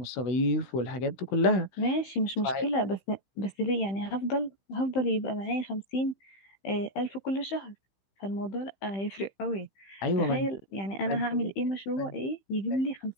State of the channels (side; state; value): right; late; 15 ms